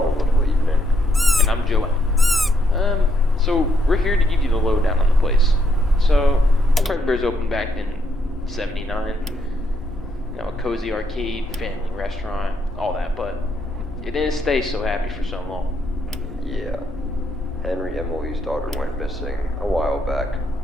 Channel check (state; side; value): normal; both; correlation 0.75